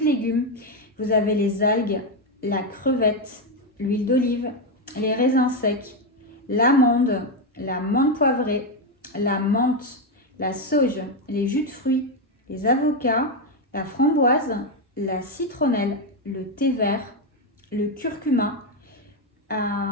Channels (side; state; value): both; normal; correlation 0.07